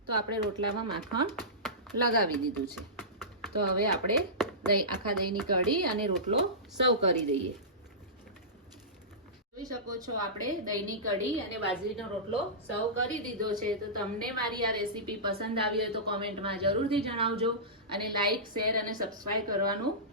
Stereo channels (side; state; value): both; normal; correlation -0.18